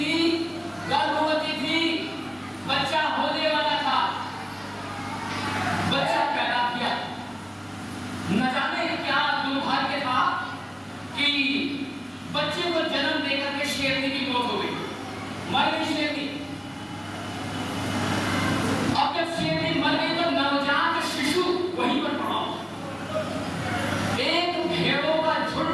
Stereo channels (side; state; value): both; identical; correlation 1.00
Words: गर्भवती थी, बच्चा होने वाला था, बच्चा पैदा किया। न जाने क्या दुर्भाग्य था कि बच्चे को जन्म देकर के शेरनी की मौत हो गई, मर गई शेरनी। अब जब शेरनी मर गई तो नवजात शिशु वहीं पर पड़ा। एक भेड़ों का